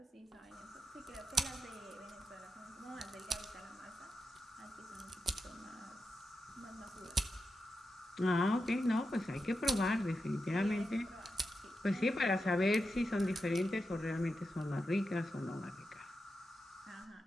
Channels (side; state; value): both; normal; correlation 0.88